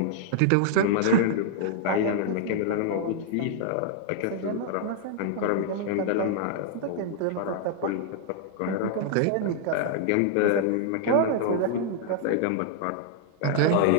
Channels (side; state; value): both; different; correlation -0.01